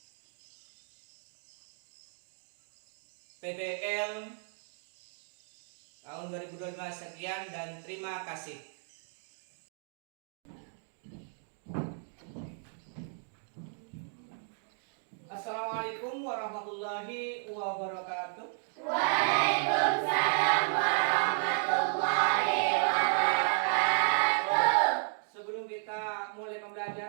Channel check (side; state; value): left; silent; 55 dB below the other